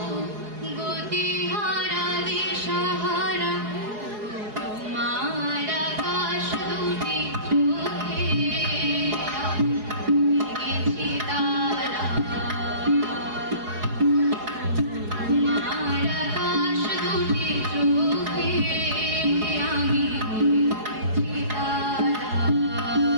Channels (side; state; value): left; late; 4.8 ms